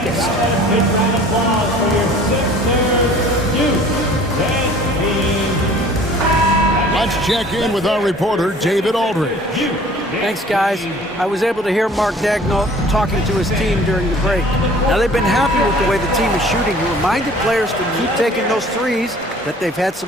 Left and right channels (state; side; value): normal; both; correlation 0.49